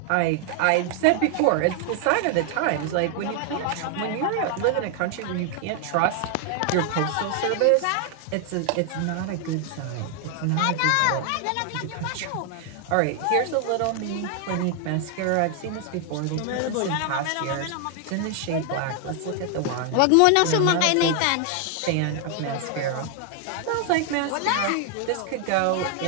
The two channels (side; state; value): both; different; correlation 0.00